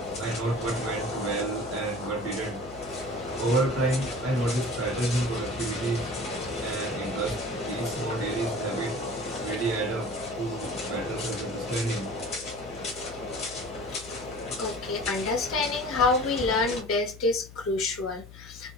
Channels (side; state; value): left; noise; hum, 17 dB below the sound